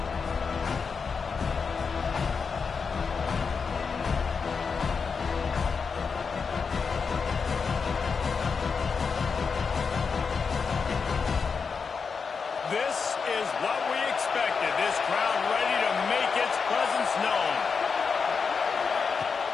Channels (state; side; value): quieter; right; 5.4 dB